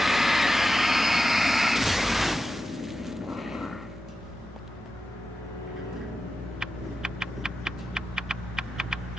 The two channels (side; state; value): both; normal; correlation 0.91